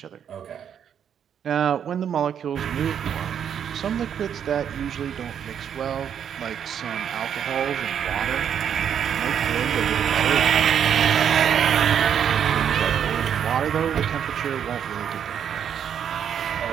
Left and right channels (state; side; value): quieter; left; 8.6 dB